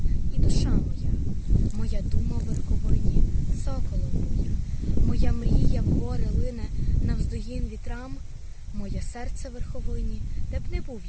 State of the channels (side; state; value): both; identical; correlation 1.00